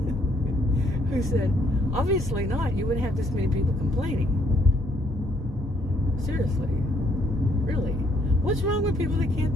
who said, obviously not. You wouldn't have this many people complaining. Seriously. Really. What's wrong with people that can't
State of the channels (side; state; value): both; normal; correlation 0.68